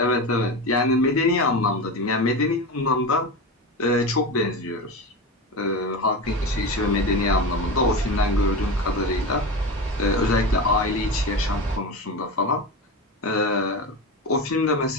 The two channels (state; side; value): normal; both; correlation 0.23